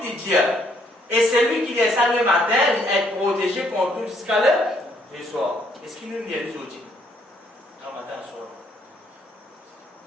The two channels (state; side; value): normal; both; correlation 0.68